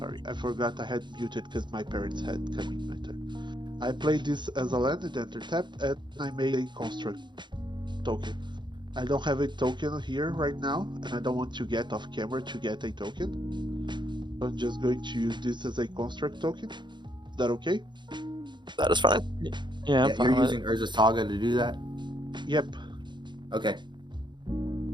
I forgot I had muted because my parents had come in my turn. I played this as a land and enter tapped, and I made a construct token. I don't have a token here right now, and I don't want to get off camera to get a token. So I'm just going to use this as a construct token. Is that okay? That is fine. Yeah, I'm Yeah, fine you're with using Urza Saga to do that? Yep. Okay.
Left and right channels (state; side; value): late; left; 0.22 ms